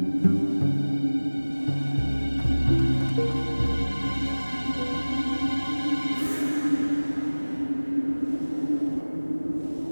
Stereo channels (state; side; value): inverted; both; correlation -1.00